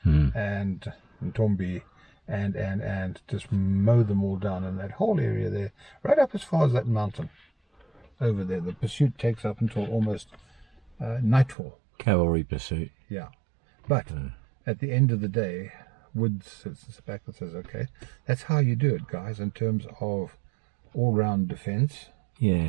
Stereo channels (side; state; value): left; drops out; at 11.6 s